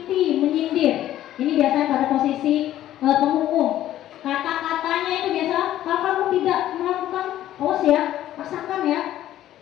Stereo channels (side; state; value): right; quieter; 12.9 dB